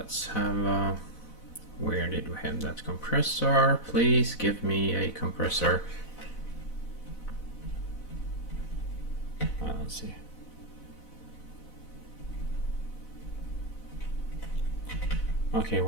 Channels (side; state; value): right; late; 4.0 ms